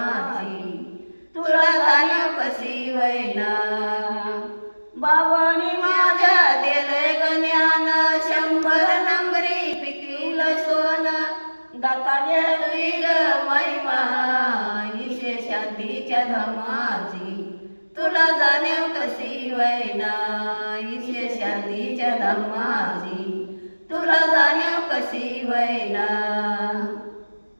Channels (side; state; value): both; inverted; correlation -1.00